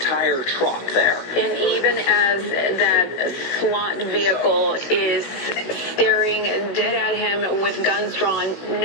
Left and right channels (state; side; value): late; right; 16 ms